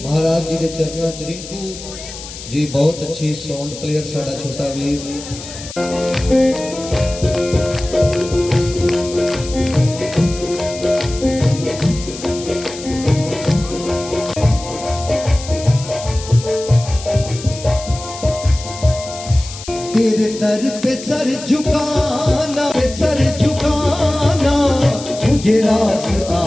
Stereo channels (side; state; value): left; noise; hiss, 13 dB below the sound